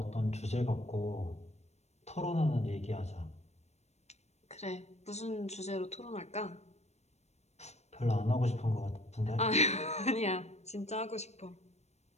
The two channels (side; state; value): right; late; 0.32 ms